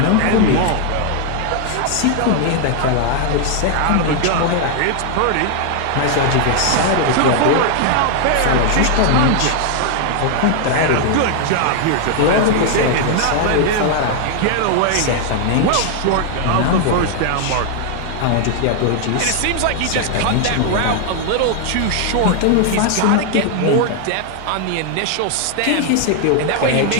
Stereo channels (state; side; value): different; both; correlation 0.00